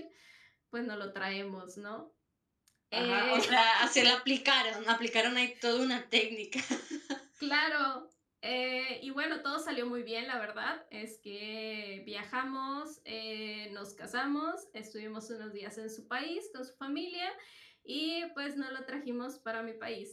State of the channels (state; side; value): identical; both; correlation 1.00